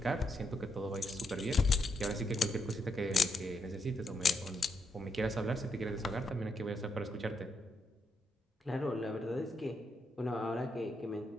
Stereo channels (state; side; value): normal; both; correlation 0.80